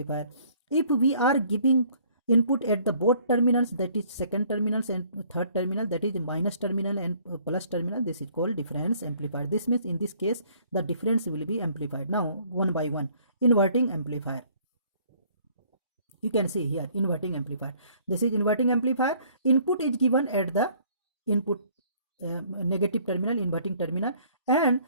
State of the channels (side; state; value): both; inverted; correlation -0.59